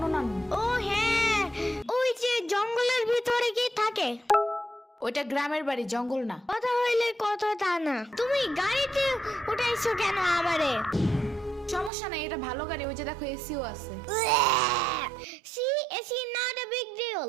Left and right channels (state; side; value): drops out; left; at 11.9 s